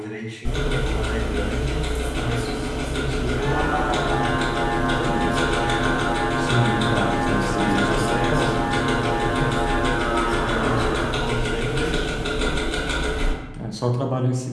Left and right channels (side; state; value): both; identical; correlation 1.00